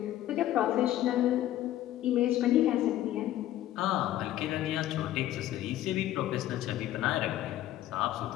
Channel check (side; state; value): right; quieter; 13.3 dB